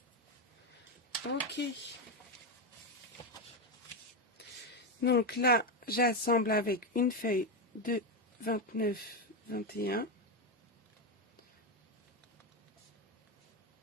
Ok. Donc là, j'assemble avec une feuille de 29-21.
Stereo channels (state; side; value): normal; both; correlation 0.10